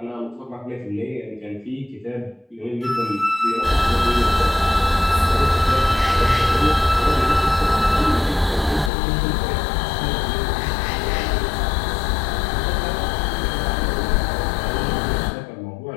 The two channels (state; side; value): drops out; right; at 8.9 s